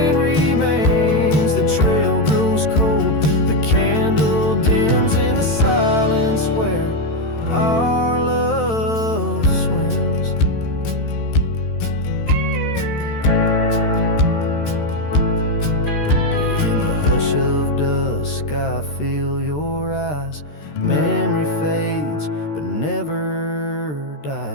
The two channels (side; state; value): right; late; 13 ms